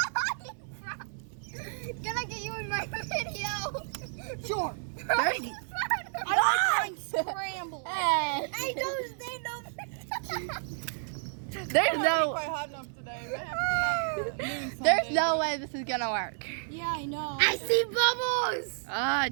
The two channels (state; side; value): silent; left; 57 dB below the other